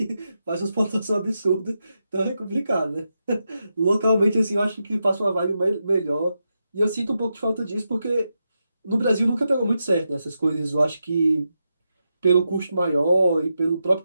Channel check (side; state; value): both; inverted; correlation -0.87